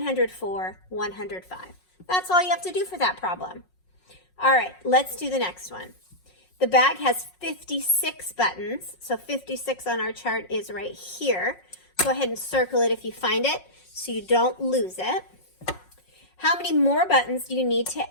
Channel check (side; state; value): right; late; 5.5 ms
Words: 105. That's all you have to do for that problem. All right, let's do the next one. The bag has 56 buttons. So 56 on our chart is right here. Go ahead and circle it if you find it so you don't lose it. How many more buttons do you need to